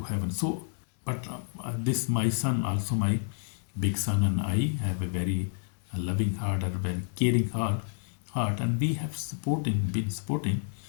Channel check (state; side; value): silent; right; digital silence